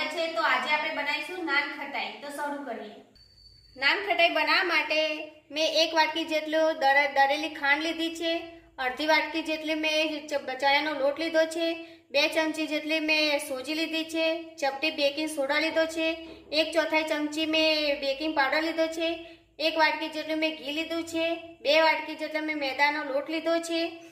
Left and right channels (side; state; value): both; identical; correlation 1.00